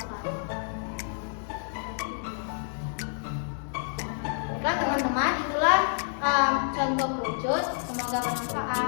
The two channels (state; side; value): silent; right; digital silence